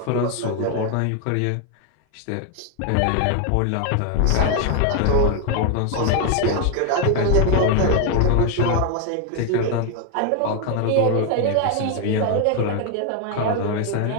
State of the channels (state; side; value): different; both; correlation 0.01